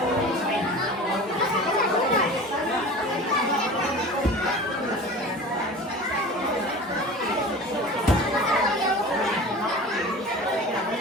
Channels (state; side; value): normal; both; correlation 0.37